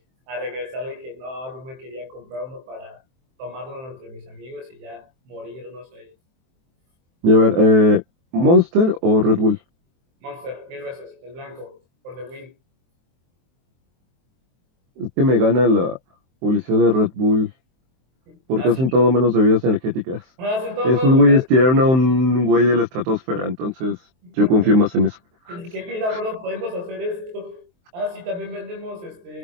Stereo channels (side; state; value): left; late; 23 ms